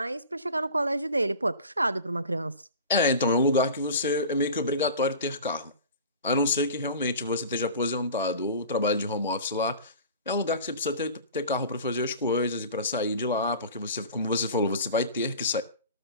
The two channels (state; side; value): inverted; both; correlation -0.38